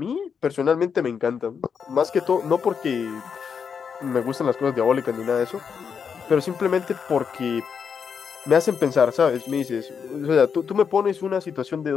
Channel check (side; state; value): right; quieter; 6.6 dB